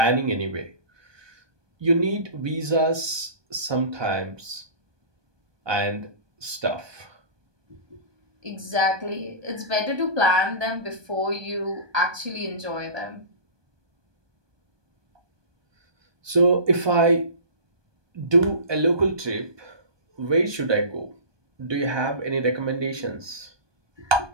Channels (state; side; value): late; left; 1.2 ms